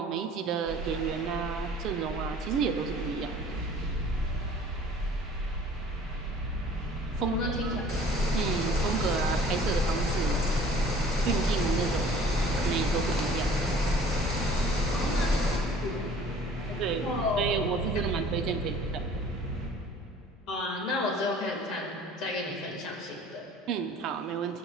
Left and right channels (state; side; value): normal; both; correlation 0.50